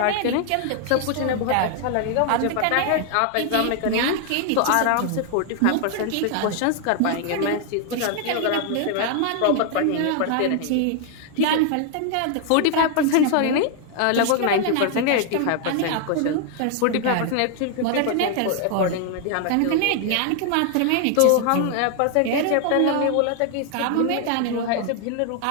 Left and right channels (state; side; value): different; both; correlation 0.00